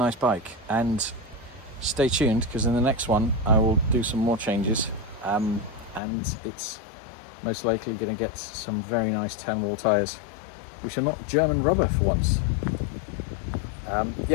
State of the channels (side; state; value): right; drops out; at 6.0 s